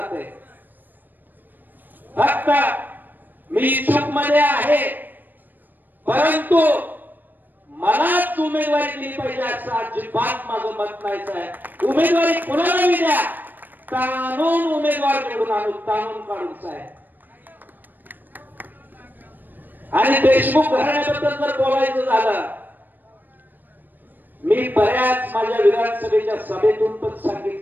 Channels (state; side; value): late; left; 0.090 ms